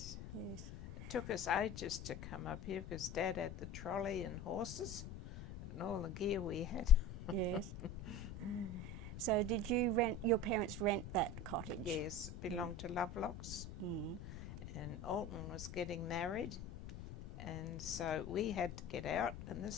Yes. It took us ages to come up here because Dad had the trolley and horses and all the gear we had. Yes. So did you your parents rent that cottage? Yes, it belonged to Lovelocks. And Alton was getting married, and so we had to get out, and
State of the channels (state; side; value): noise; left; rumble, 10 dB below the sound